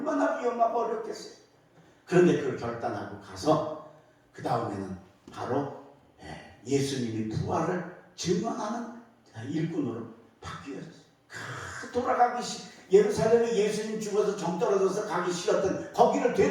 위험하고 어렵겠어요. 그런데 그걸 결단하고 가서 그 다음에는 바로 예수님이 부활을 증언하는 일꾼으로 바뀌어졌어요. 돌아가기 예루살렘에 예수님 죽어서 정 떨어져서 가기 싫었던 거기를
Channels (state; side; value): identical; both; correlation 1.00